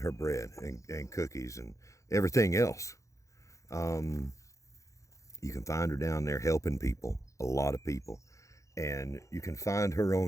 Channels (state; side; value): late; right; 0.15 ms